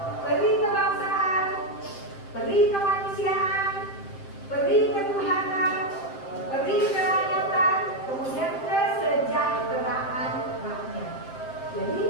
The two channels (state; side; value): late; right; 7.6 ms